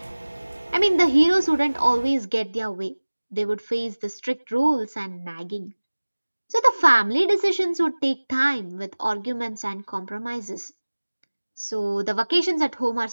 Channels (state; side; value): inverted; both; correlation -1.00